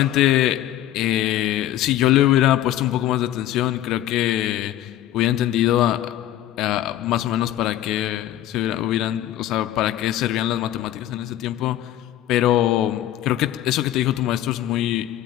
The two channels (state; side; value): quieter; right; 13.0 dB